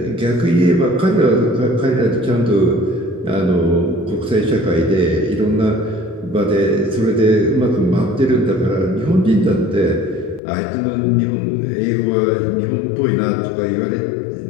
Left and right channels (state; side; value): drops out; right; at 10.4 s